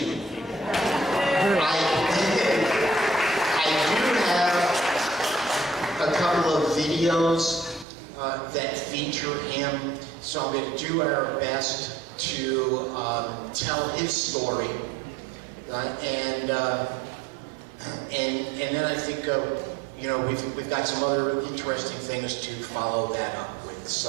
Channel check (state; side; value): drops out; left; at 7.9 s